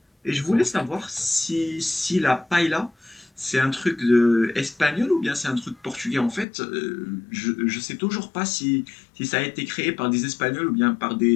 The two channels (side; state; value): right; drops out; at 6.5 s